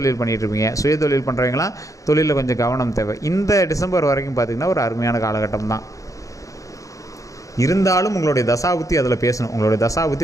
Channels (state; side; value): late; right; 0.16 ms